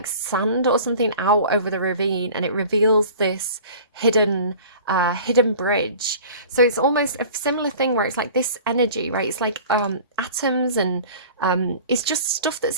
sand or something out over the ravine, and it reveals this hidden bridge. So it's almost a similar thing where it's like this energy, right? It's like atoms, and it's just stuff that's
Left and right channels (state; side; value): inverted; both; correlation -0.43